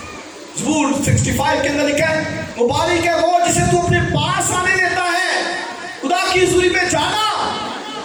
زبور 65 کے اندر لکھا ہے مبارک ہے وہ جسے تو اپنے پاس آنے دیتا ہے. خدا کی حضوری میں جانا،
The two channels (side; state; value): both; identical; correlation 1.00